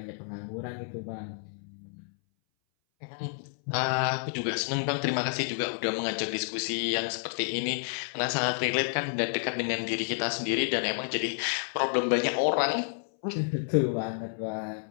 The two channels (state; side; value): silent; right; 58 dB below the other